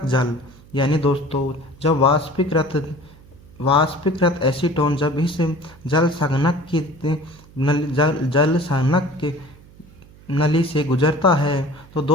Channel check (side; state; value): right; noise; hum, 24 dB below the sound